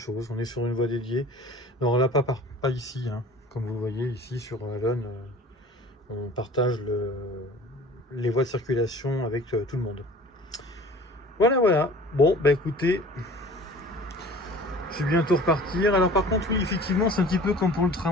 On est sur une voie dédiée. Alors là, pas ici, hein. Comme vous le voyez ici sur Allonne, on partage les voies de circulation avec tout le monde. Voilà. Bon, écoutez, je vais bientôt repartir. Alors par contre, oui, effectivement, c'est un petit peu comme pour le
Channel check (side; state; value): both; normal; correlation 0.45